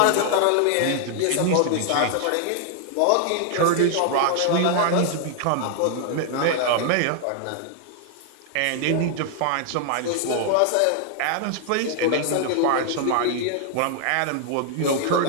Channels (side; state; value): both; different; correlation 0.00